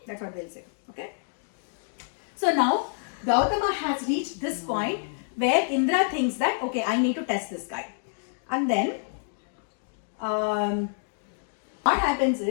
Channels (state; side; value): silent; right; digital silence